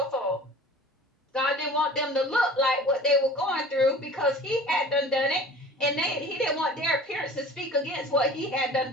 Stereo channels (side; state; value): both; normal; correlation 0.43